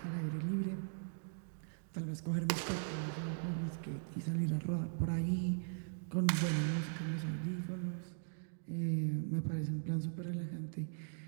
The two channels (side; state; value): left; silent; digital silence